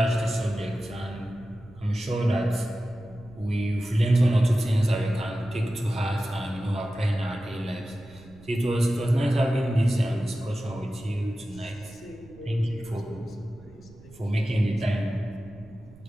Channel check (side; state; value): right; noise; rumble, 22 dB below the sound